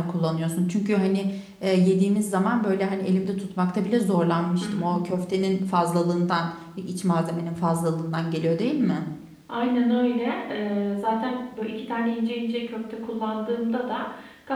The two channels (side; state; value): both; identical; correlation 1.00